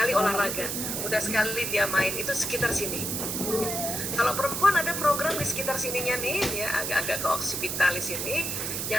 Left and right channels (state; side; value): noise; right; hiss, 2 dB below the sound